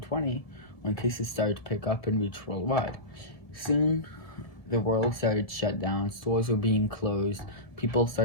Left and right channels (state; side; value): late; right; 1.7 ms